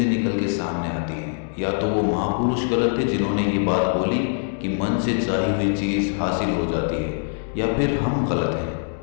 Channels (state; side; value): silent; right; digital silence